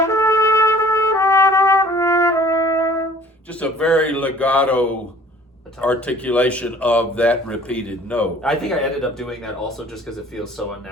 Just a very legato articulation of that repeated note. I think I ended up doing that also just because it feels so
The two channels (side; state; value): both; normal; correlation 0.51